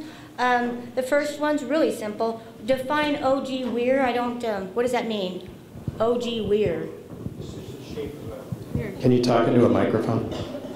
The first one's really simple. Define O.G. Weir. What does that mean? O.G. Weir. Can you talk into a microphone?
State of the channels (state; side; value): identical; both; correlation 1.00